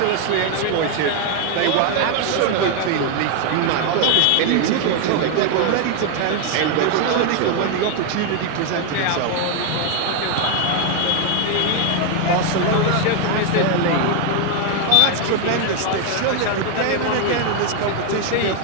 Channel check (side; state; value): both; different; correlation 0.01